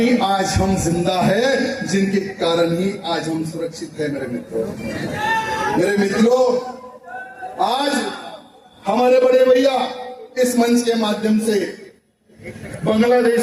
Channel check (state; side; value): identical; both; correlation 1.00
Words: आज हम जिंदा है, जिनके कारण ही आज हम सुरक्षित है मेरे मित्रों। मेरे मित्रों, आज हमारे बड़े भैया इस मंच के माध्यम से